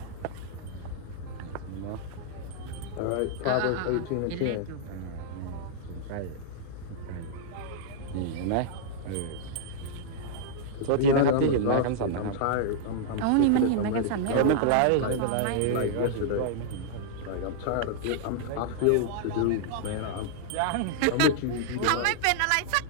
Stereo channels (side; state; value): both; different; correlation -0.01